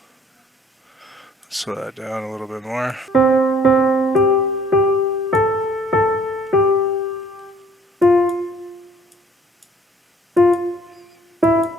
Slow that down a little bit more.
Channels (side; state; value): both; normal; correlation 0.59